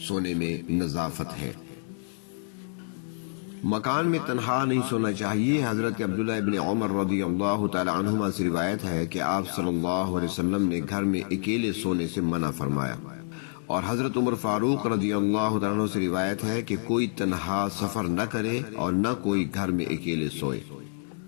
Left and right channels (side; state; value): right; silent; digital silence